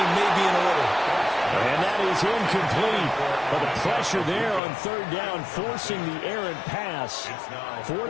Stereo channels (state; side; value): drops out; right; at 4.6 s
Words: may be in order. And that is incomplete. But the pressure there on 3rd down, forcing the errant pass.